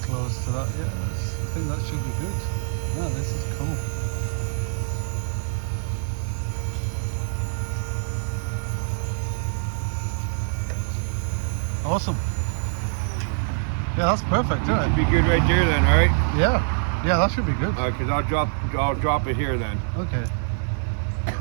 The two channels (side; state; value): left; silent; digital silence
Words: close to that. Yeah, I think that should be good. Yeah, this is cool. Awesome. Yeah, that's perfect, isn't it? Be good right there then, all right? Yeah. Yeah, that should be good. All right, because I'll drop it here then. Okay.